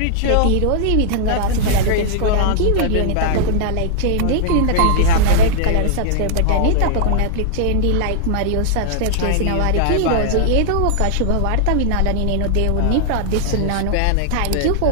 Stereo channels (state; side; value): different; both; correlation -0.01